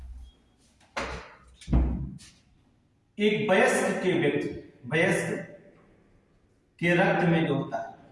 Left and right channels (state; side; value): identical; both; correlation 1.00